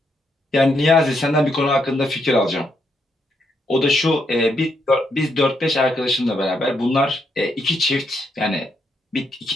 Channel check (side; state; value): both; normal; correlation 0.77